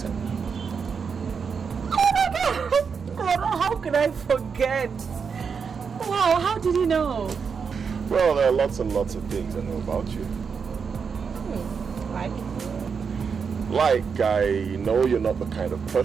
Oh my God! Oh, how could I forget? Wow, how did you know? Well, there are lots and lots of things I know about you. Like I know you're not the kind of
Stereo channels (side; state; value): left; quieter; 6.0 dB